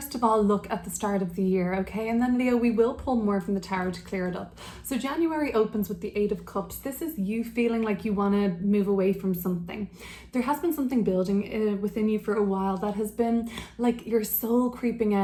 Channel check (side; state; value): both; identical; correlation 1.00